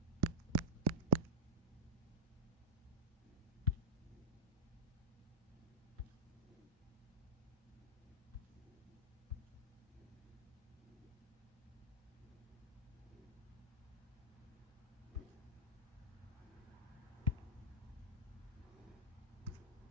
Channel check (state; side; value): normal; both; correlation -0.04